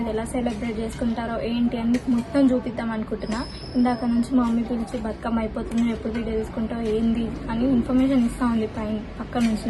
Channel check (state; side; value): identical; both; correlation 1.00